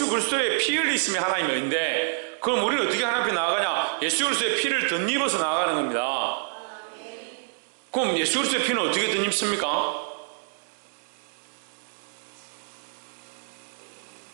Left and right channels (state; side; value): silent; left; digital silence